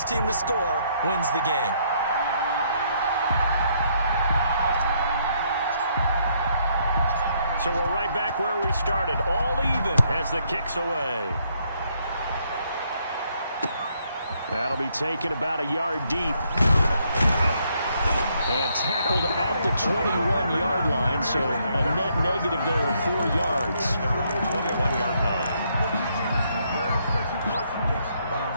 team to score wins the game. So we're right back where we started, all even as the kick's away. That'll be taken about a yard deep. And tackled at the 21-yard line, so a net negative there of 4 yards. 21-yard line.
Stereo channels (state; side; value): inverted; both; correlation -0.72